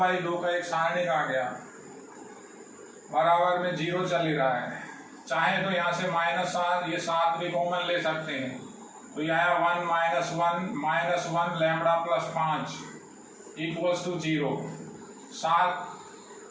का एक सारणिक आ गया, बराबर में 0 चल ही रहा है। चाहे तो यहाँ से माइनस 7, ये 7 भी कॉमन ले सकते हैं, तो यह आया 1 minus 1 lambda plus 5 equals to 0। 7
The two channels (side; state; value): both; identical; correlation 1.00